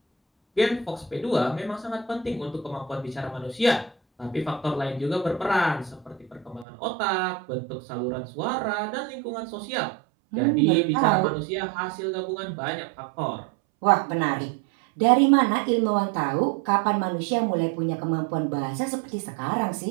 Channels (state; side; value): drops out; left; at 6.7 s